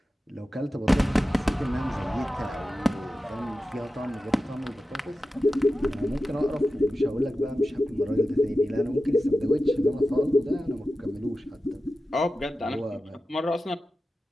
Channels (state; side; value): normal; both; correlation 0.93